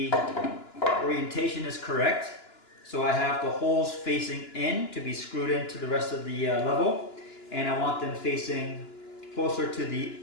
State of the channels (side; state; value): right; late; 2.9 ms